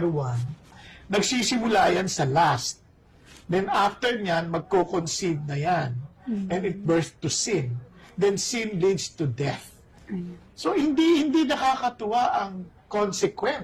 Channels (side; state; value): both; identical; correlation 1.00